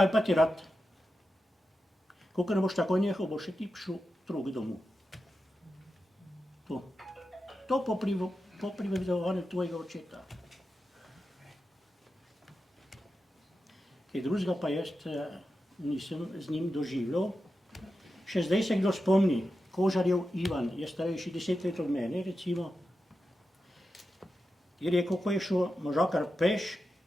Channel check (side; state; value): both; normal; correlation 0.90